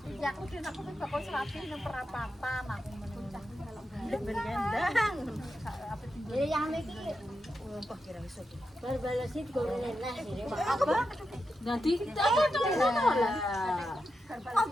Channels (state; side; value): normal; both; correlation 0.88